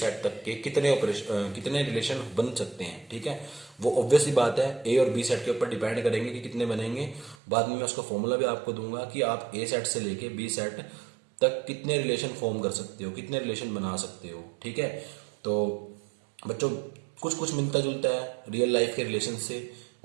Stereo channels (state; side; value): drops out; left; at 7.4 s